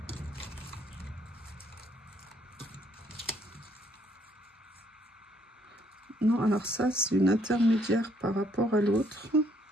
Non, alors ça, c'est une intermédiaire par rapport à l'autre.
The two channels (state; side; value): normal; both; correlation 0.68